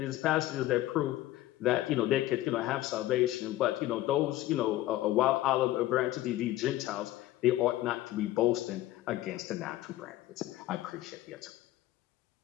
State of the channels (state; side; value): quieter; right; 15.4 dB